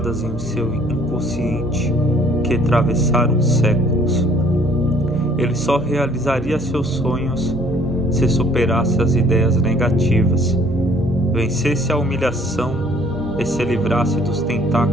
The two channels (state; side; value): normal; both; correlation 0.59